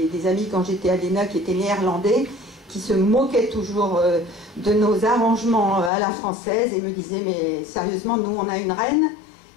des amis quand j'étais à l'ENA qui étaient néerlandais, qui se moquaient toujours de nos arrangements à la française et me disaient, mais sérieusement, nous on a une reine,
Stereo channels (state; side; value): drops out; right; at 5.9 s